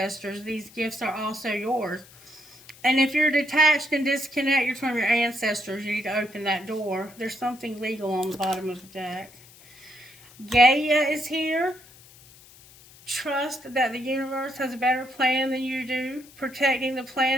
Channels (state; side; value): noise; left; hiss, 23 dB below the sound